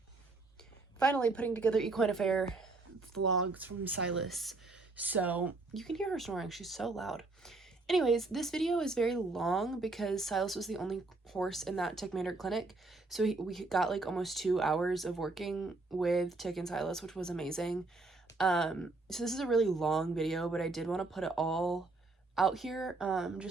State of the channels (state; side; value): quieter; left; 3.4 dB